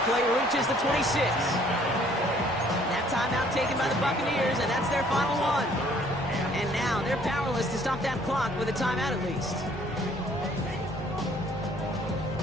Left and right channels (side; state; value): both; normal; correlation 0.60